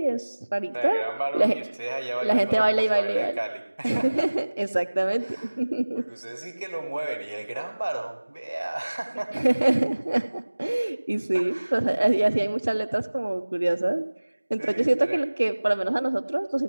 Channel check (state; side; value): inverted; both; correlation -1.00